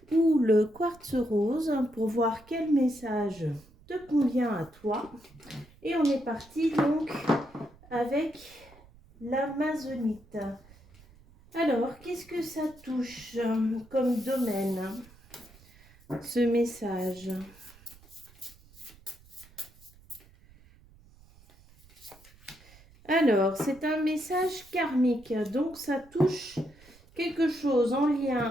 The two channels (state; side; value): noise; right; rumble, 25 dB below the sound